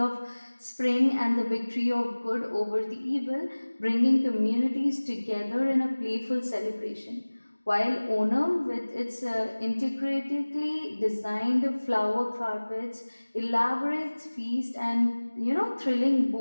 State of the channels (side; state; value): both; inverted; correlation -1.00